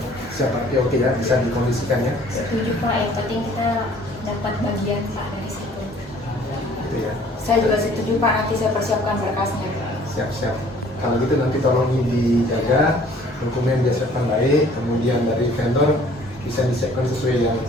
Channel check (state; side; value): normal; both; correlation 0.55